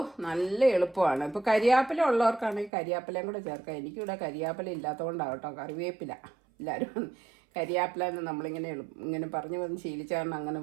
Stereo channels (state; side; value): drops out; left; at 2.7 s